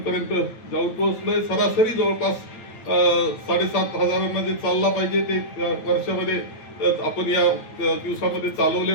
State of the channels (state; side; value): late; right; 9.0 ms